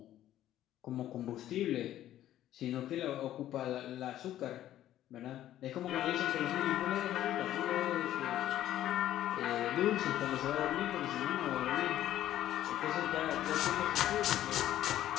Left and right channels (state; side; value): quieter; right; 12.7 dB